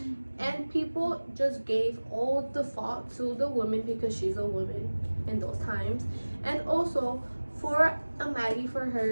and people just gave all the fault to the woman because she's a woman in those times. And also for a Maggie, for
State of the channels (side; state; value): both; inverted; correlation -1.00